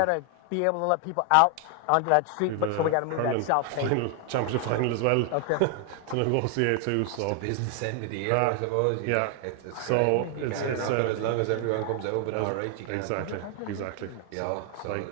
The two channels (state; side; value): different; both; correlation 0.00